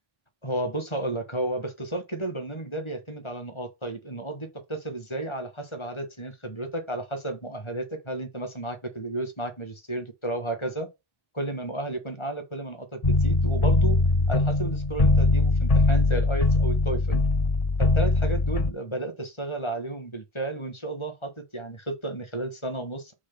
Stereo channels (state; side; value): late; right; 1.4 ms